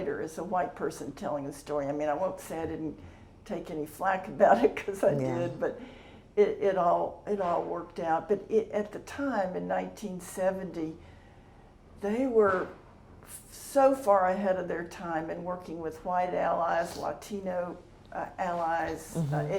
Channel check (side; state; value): both; identical; correlation 1.00